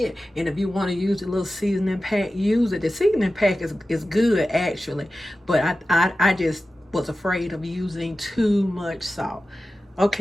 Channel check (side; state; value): both; normal; correlation 0.94